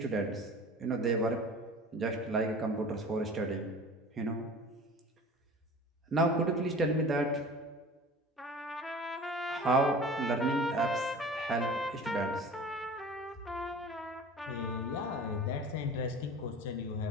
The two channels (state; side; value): normal; both; correlation 0.40